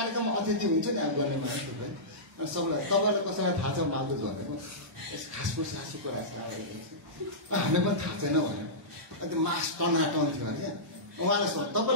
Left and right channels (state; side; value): normal; both; correlation -0.17